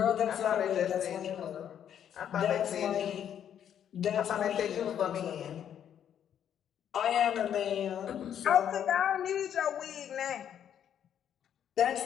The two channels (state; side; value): quieter; right; 9.5 dB